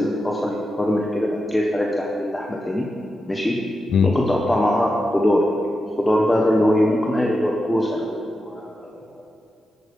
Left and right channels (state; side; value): normal; both; correlation 0.89